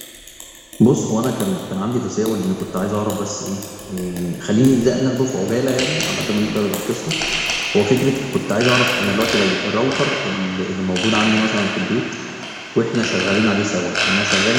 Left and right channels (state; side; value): identical; both; correlation 1.00